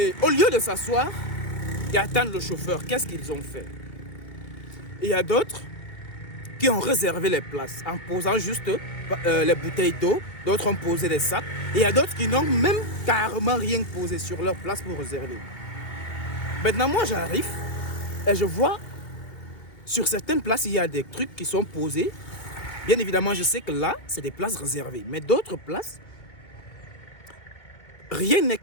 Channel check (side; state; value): right; late; 2.2 ms